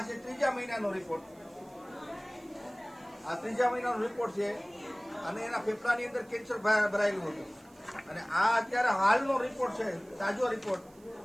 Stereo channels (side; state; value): right; noise; hiss, 29 dB below the sound